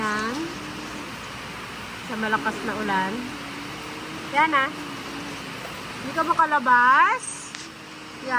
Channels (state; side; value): identical; both; correlation 1.00